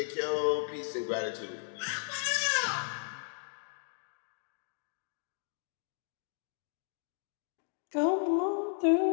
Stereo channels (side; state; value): right; silent; 55 dB below the other